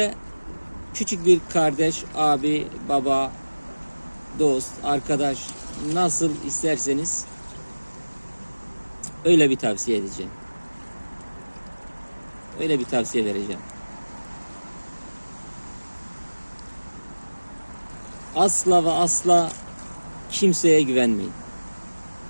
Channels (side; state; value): both; inverted; correlation -1.00